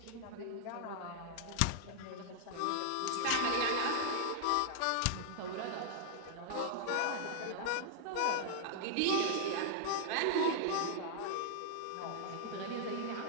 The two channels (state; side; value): different; both; correlation -0.01